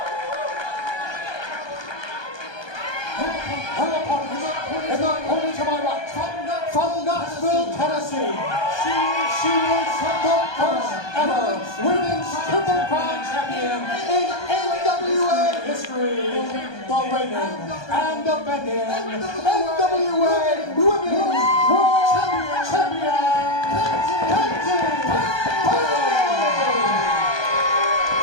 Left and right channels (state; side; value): late; right; 1.2 ms